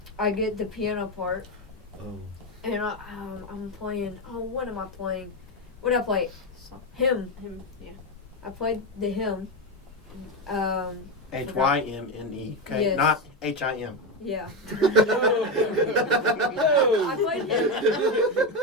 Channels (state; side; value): normal; both; correlation 0.11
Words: get the piano part, and I'm playing. Oh, what am I playing? What did I play? song? Hymn. Him. Yeah. I played the hymn. HYMNE. Okay, Yes. not HIM. Yeah. No. I played hymn.